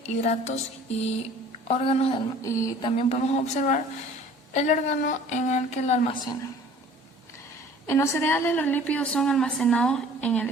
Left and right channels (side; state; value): both; normal; correlation 0.49